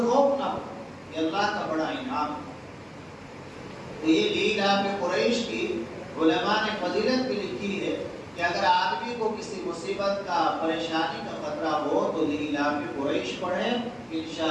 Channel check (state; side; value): identical; both; correlation 1.00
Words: خوف نہ ہو، یہ اللہ کا بڑا انعام ہے۔ تو یہ لیلاف قریش کی علماء نے فضیلت بھی لکھی ہے کہ اگر آدمی کو کسی مصیبت کا، پریشانی کا خطرہ ہو تو لیلاف قریش پڑھے،